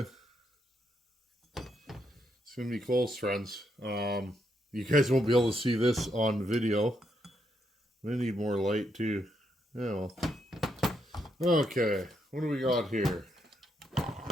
gonna be close, friends. You guys won't be able to see this on video. I need more light too. Yeah, well. Okay, what do we got here?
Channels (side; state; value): both; normal; correlation 0.78